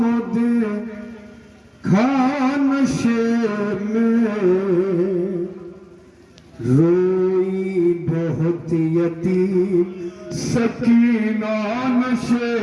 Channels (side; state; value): both; identical; correlation 1.00